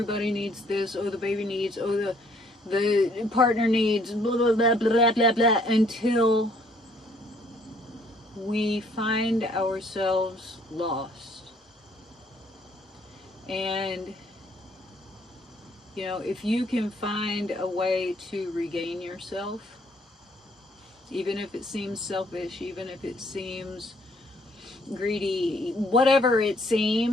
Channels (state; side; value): normal; both; correlation 0.64